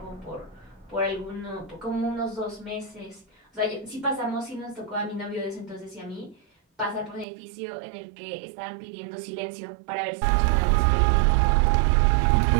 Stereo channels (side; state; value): left; drops out; at 7.2 s